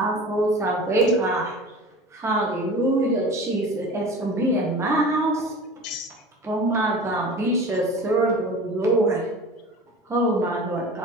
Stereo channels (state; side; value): normal; both; correlation 0.37